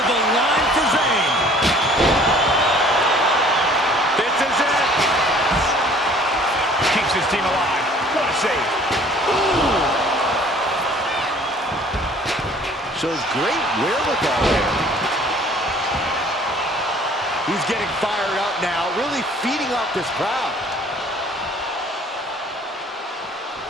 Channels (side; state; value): both; normal; correlation 0.53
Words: the line for Zayn. This is it. Keeps his team alive. What a save. Ooh. Shows great wherewithal there. He's getting fired up now, really feeding off this crowd.